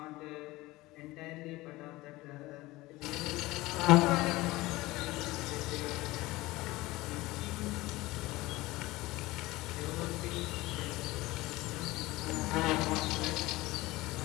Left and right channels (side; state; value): right; quieter; 19.6 dB